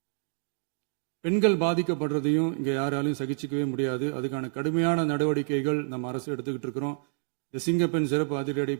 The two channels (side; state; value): left; silent; digital silence